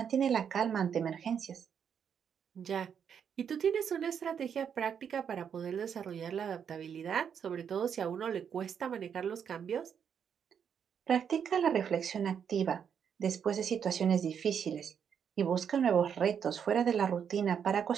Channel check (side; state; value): left; quieter; 7.7 dB